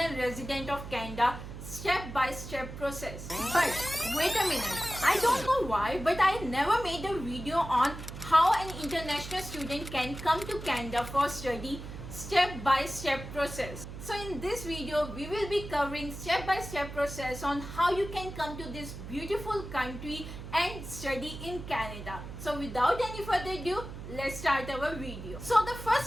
resident of Canada step-by-step process. But wait a minute, I don't know why, but I never made a video on how an international student can come to Canada for study step-by-step process. So in this video, we will be covering step-by-step process on how you can come to this beautiful country and study in Canada. So without any further ado, let's start our video. So the first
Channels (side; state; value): right; noise; hum, 10 dB below the sound